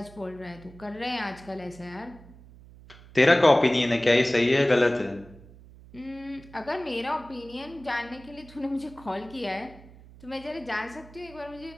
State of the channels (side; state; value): right; noise; hum, 21 dB below the sound